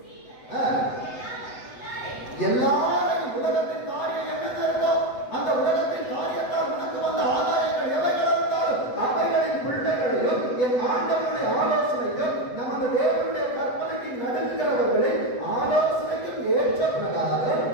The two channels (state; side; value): late; right; 7.9 ms